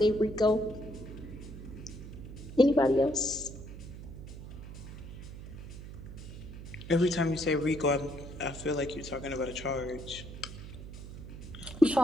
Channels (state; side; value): noise; right; hum, 11 dB below the sound